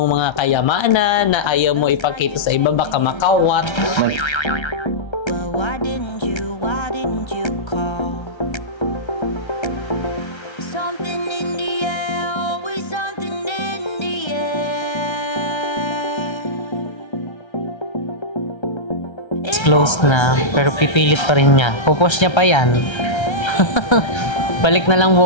mga kayamanan na ayaw mo ipakita sa iba, baka makawat. Well, why didn't you call? Something in the air, always something in the air. It's closed na, pero pipilit pa rin niya. Pupush niya pa yan. Balik na lang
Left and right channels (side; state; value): right; late; 1.3 ms